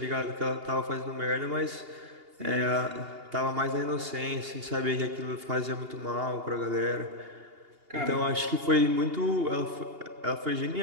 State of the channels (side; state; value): left; late; 2.8 ms